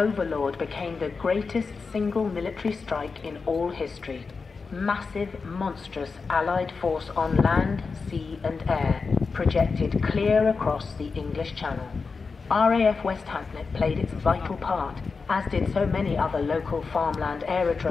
became the greatest single military strike in all history. Massive, monstrous Allied force on land, sea and air, projected clear across the English Channel. RAF West Hampnet played its vital part, as did so many other local farmland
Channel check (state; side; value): quieter; right; 4.7 dB